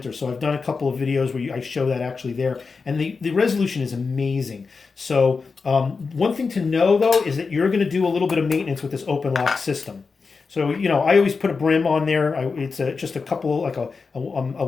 So I've done a couple of videos where I show that actually there, and the resolution is amazing. So one thing to know though is that you're going to do a little bit of maintenance with this OpenLOCK system. So I always put a brim on there. It's just a couple, like a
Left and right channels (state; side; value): quieter; right; 4.7 dB